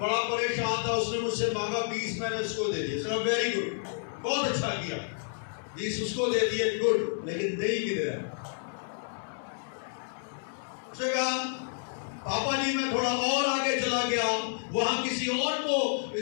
پریشان تھا، اس نے مجھ سے مانگا 20، میں نے اس کو دے دیا۔ اس نے کہا ویری گڈ، بہت اچھا کیا، 20 اس کو دے دیے، گڈ، لیکن دہی کدھر ہے؟ اس نے کہا پاپا جی میں تھوڑا اور آگے چلا گیا، وہاں کسی اور کو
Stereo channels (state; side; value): silent; right; 58 dB below the other